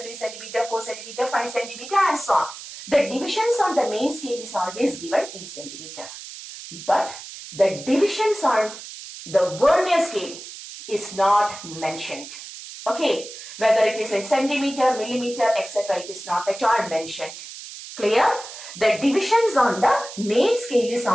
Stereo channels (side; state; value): right; noise; hiss, 13 dB below the sound